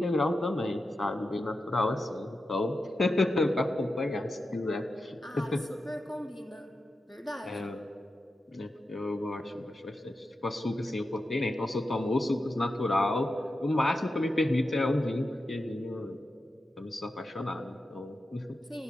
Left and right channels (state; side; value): normal; both; correlation 0.90